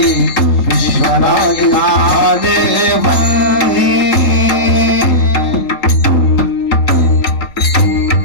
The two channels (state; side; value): late; right; 3.8 ms